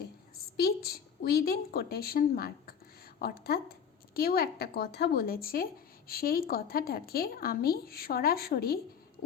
স্পিচ উইদিন কোটেশন মার্ক, অর্থাৎ কেউ একটা কথা বলেছে, সেই কথাটাকে আমি সরাসরি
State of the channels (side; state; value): right; quieter; 7.3 dB